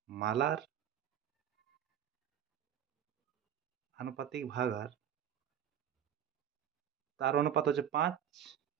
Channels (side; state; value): left; quieter; 9.8 dB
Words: আনুপাতিক ভাগ হার, তার অনুপাত হচ্ছে 5